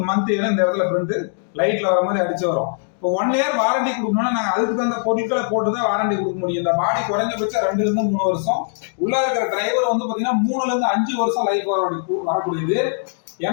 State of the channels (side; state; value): right; silent; digital silence